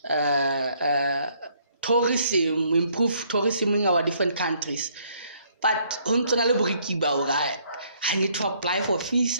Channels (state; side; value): inverted; both; correlation -0.66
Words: tourism, improve tourism in our different countries. But I need to apply for